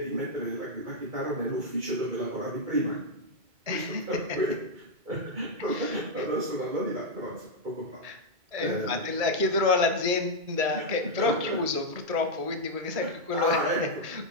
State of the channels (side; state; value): left; late; 2.3 ms